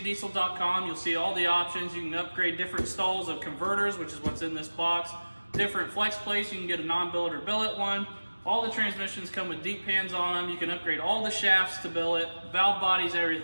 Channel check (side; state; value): both; inverted; correlation -1.00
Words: you'll see all the options. You can upgrade different stalls of converters, which is what's in this box. Different flex plates, you can get a non-billet or billet one. All the transmissions come with deep pans on them. You can upgrade all the shafts to billet, valve bodies,